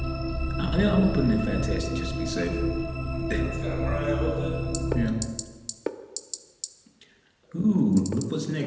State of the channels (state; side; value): identical; both; correlation 1.00